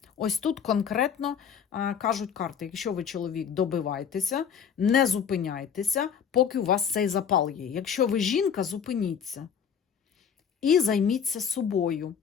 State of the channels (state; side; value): quieter; right; 7.5 dB